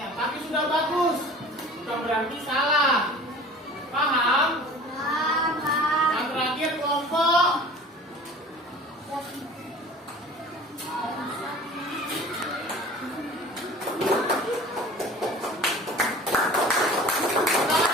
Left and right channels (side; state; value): both; normal; correlation 0.43